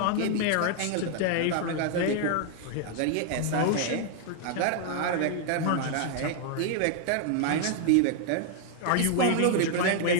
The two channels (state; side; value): different; both; correlation 0.00